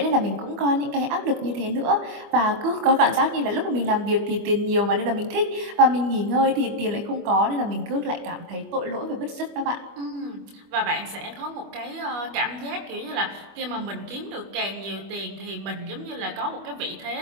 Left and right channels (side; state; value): left; late; 25 ms